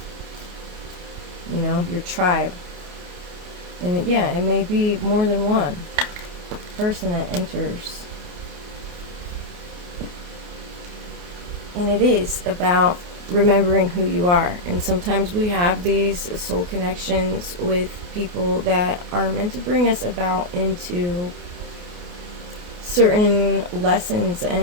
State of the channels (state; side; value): late; left; 29 ms